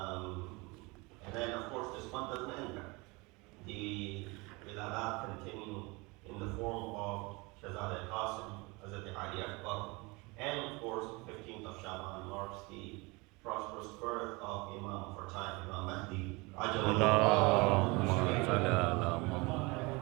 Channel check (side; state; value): left; quieter; 25.9 dB